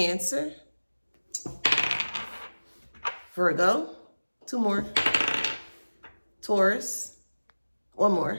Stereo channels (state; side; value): inverted; both; correlation -1.00